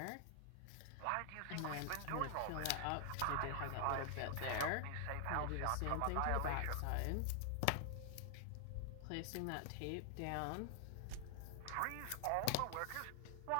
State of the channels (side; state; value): both; different; correlation 0.00